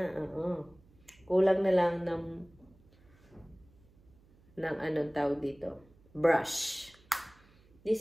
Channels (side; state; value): right; noise; hum, 29 dB below the sound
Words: Kulang na lang ng anong tawag dito. Brush.